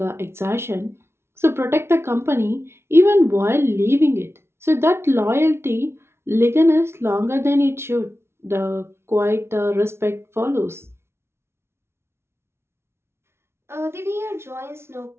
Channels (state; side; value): late; left; 0.12 ms